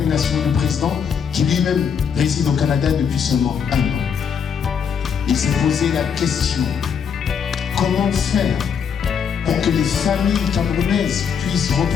du président qui lui-même réside au Canada depuis seulement 1 an. Il s'est posé la question, comment faire pour que les familles camerounaises puissent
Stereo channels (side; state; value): right; quieter; 7.0 dB